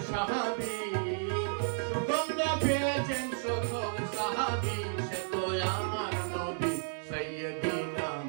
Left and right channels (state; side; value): silent; left; digital silence